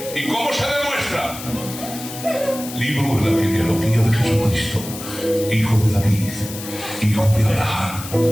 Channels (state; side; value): noise; left; hiss, 11 dB below the sound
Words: ¿Y cómo se demuestra? Libro de la genealogía de Jesucristo, hijo de David, hijo de Abraham.